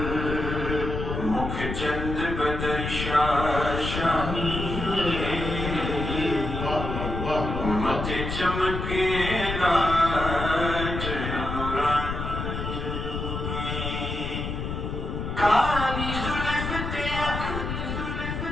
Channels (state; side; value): noise; left; rumble, 4 dB below the sound